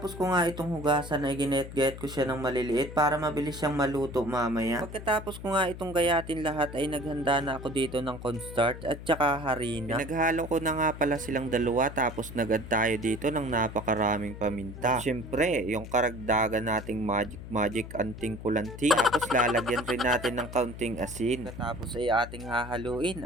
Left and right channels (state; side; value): noise; left; hum, 12 dB below the sound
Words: ko nga itong hugasan ay ginet-get ko siya ng maliliit para mabilis siyang maluto mamaya. Pagkatapos ko nga itong gayatin lahat ay naghanda na ako dito ng cornstarch at saka harina. Naghalo ko na nga pala silang dalawa tapos nagad tayo dito ng napakaraming paminta. Siyempre, yung karagdagan nating magic anting kulanting. Tapos lalagyan rin natin ng kaunting asin. Tapos ay ating hahaluin.